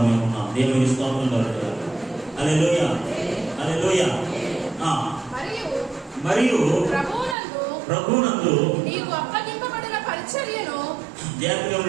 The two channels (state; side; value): drops out; left; at 7.4 s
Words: మేము ఉన్నాం. దేవునికి స్తోత్రం కలుగుగాక. హల్లెలూయా, హల్లెలూయా. మరియు ప్రభువునందు నీకు అప్పగింపబడిన పరిచర్యను, జాగ్రత్తగా